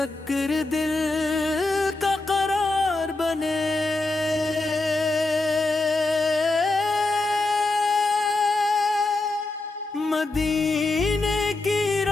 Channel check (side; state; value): right; quieter; 3.1 dB